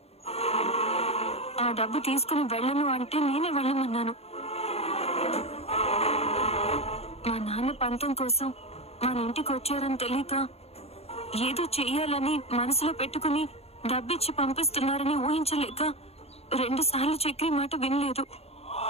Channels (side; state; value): right; late; 0.30 ms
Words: ఆ డబ్బు తీసుకుని వెళ్ళను అంటే నేనే వెళ్ళమన్నాను. మా నాన్న పంతం కోసం మన ఇంటికి వచ్చారని తెలియక ఏదో చెయ్యాలని మనసులో పెట్టుకుని డబ్బిచ్చి పంపిస్తున్నారని ఊహించలేక 2 సార్లు చక్రి మాట వినలేదు.